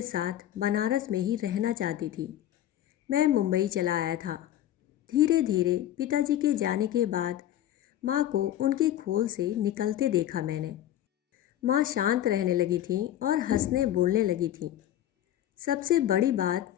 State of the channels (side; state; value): right; quieter; 12.1 dB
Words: साथ बनारस में ही रहना चाहती थी। मैं मुंबई चला आया था। धीरे धीरे पिताजी के जाने के बाद माँ को उनके खोल से निकलते देखा मैंने। माँ शांत रहने लगी थी और हंसने बोलने लगी थी। सबसे बड़ी बात